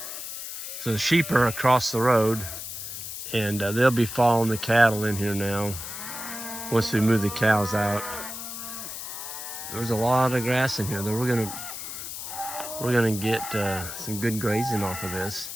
So the sheep are across the road, and they'll be following the cattle in here now once we move the cows out. There's a lot of grass in here, though. We're gonna get some good grazing off of this,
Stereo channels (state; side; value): noise; left; hiss, 8 dB below the sound